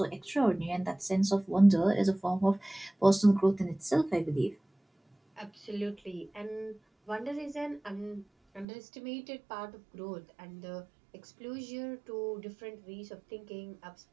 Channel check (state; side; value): drops out; left; at 8.7 s